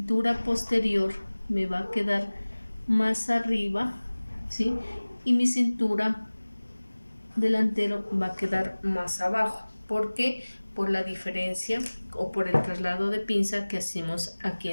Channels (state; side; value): inverted; both; correlation -1.00